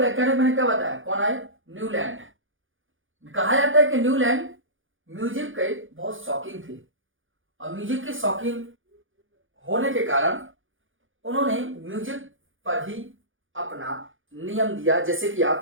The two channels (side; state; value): left; late; 0.58 ms